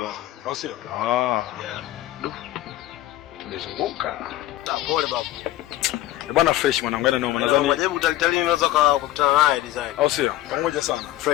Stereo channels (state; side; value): quieter; right; 15.0 dB